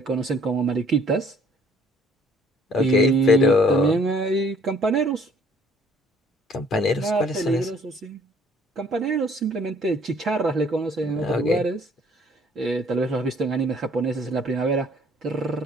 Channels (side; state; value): both; normal; correlation 0.59